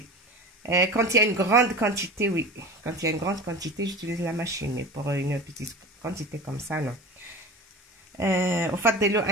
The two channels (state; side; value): normal; both; correlation 0.33